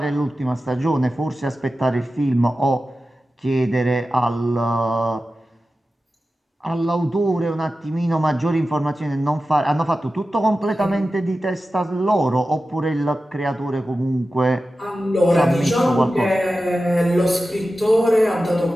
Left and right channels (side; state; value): both; normal; correlation 0.94